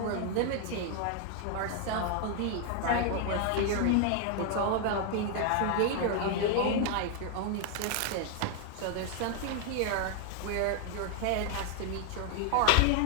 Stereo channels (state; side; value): different; both; correlation 0.00